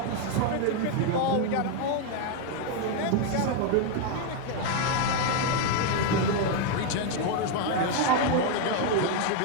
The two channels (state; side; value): different; both; correlation 0.01